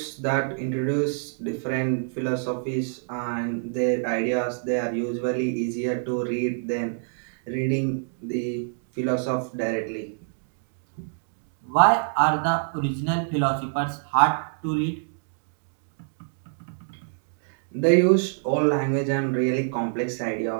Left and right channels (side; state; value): left; silent; digital silence